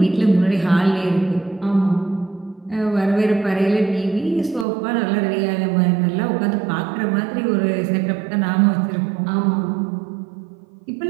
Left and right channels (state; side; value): drops out; left; at 4.7 s